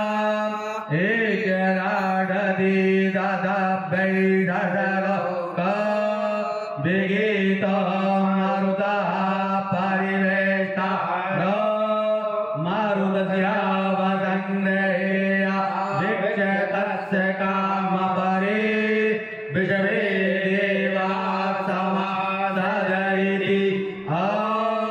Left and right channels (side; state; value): both; identical; correlation 1.00